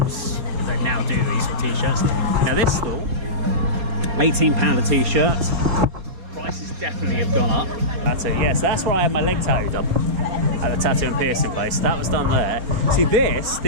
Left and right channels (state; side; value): late; left; 4.2 ms